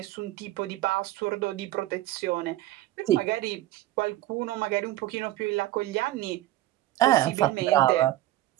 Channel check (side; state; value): left; quieter; 15.3 dB